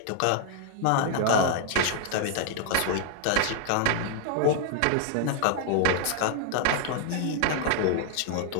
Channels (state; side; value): different; both; correlation 0.00